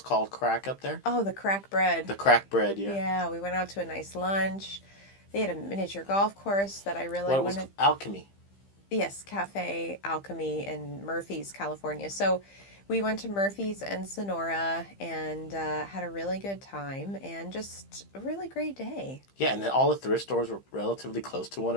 crack up there? Oh, the crack bread. The crack bread, yeah. Yeah, we went out to a nice lunch. They had a miniature golf course that I really wanted. What was Alchemy? Yes, Cafe Alchemy in Murphy's, California. So we went to Murphy's and Sonora and had a really good time and just a really great day. Yeah, and then all the thrift stores were relatively close to one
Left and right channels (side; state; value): right; late; 15 ms